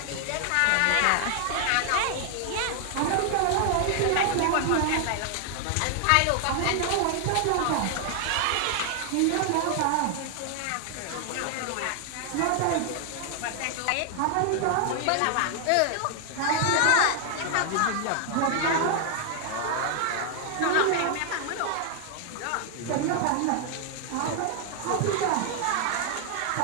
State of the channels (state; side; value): different; both; correlation 0.00